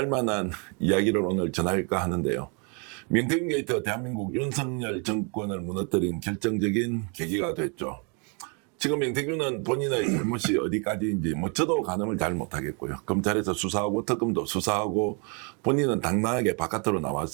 이야기를 오늘 전할까 하는데요. 명태균 게이트가 대한민국 윤석열 정권을 무너뜨린 결정적인 계기가 됐죠. 지금 명태균은 본인의 잘못이 어디까지인지 저도 가늠을 잘 못하겠고요. 검찰에서 수사하고 특검도 수사하고 본인은 당당하게 바깥으로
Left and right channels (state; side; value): quieter; left; 35.3 dB